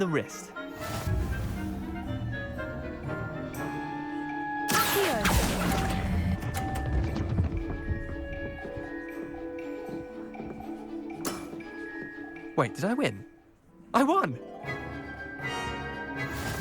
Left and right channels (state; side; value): identical; both; correlation 1.00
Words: wrist. Wait, did I win? I won!